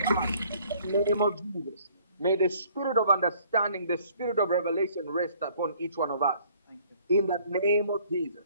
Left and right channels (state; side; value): inverted; both; correlation -0.59